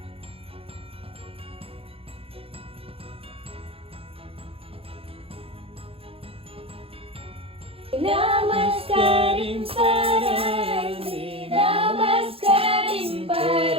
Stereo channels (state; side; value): late; left; 0.27 ms